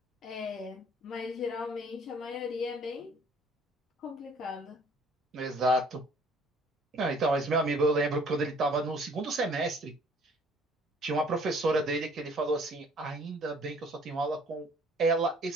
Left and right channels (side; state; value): both; normal; correlation 0.56